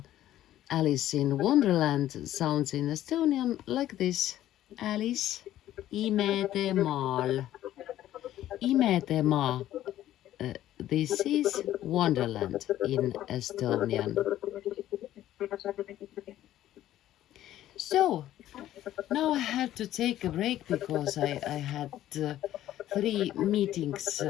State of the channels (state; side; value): quieter; right; 13.1 dB